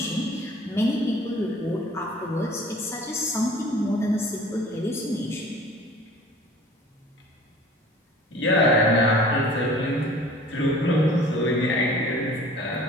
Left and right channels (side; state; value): both; normal; correlation 0.47